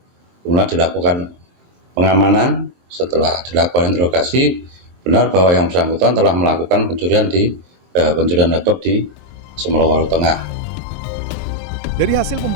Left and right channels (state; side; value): late; left; 23 ms